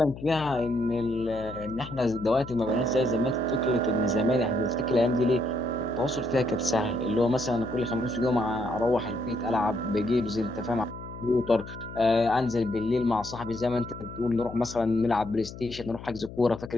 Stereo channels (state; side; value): noise; left; hum, 13 dB below the sound